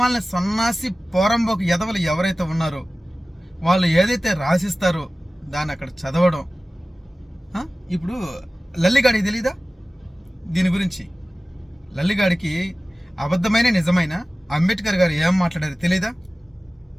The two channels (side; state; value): both; normal; correlation 0.96